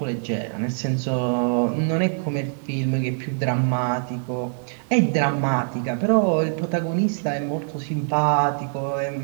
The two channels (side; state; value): left; silent; 59 dB below the other